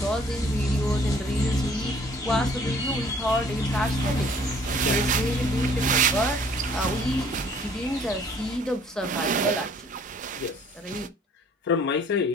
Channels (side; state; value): both; normal; correlation 0.57